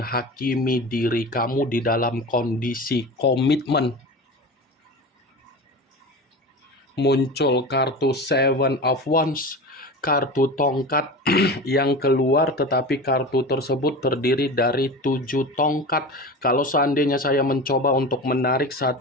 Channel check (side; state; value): both; normal; correlation 0.30